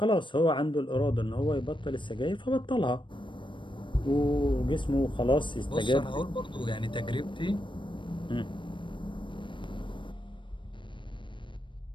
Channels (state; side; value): late; right; 0.24 ms